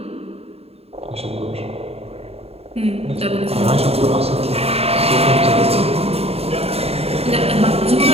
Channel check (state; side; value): late; left; 0.29 ms